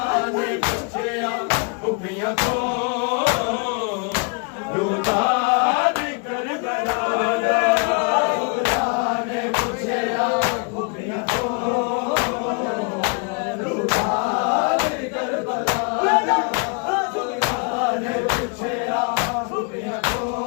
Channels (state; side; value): quieter; right; 34.6 dB